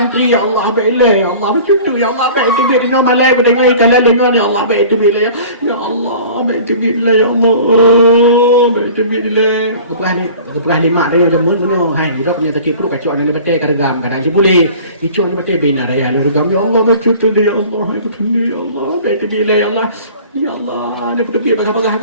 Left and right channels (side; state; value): both; inverted; correlation -0.44